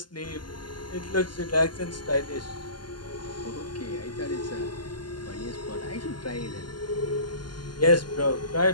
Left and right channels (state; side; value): late; right; 0.71 ms